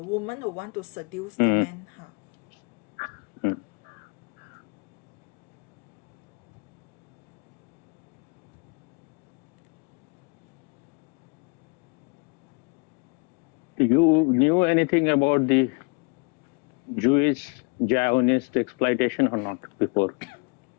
who want to seduce the man, huh? You knew anything about the Jewish Zionist exploitation or not before?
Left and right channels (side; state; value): right; quieter; 33.6 dB